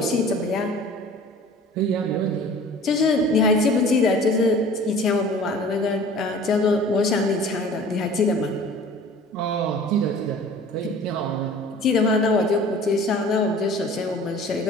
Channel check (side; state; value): both; normal; correlation 0.45